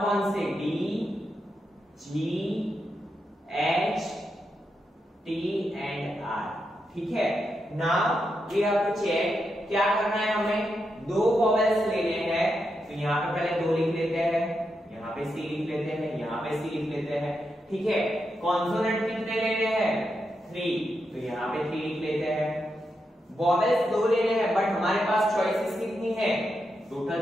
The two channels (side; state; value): both; normal; correlation 0.85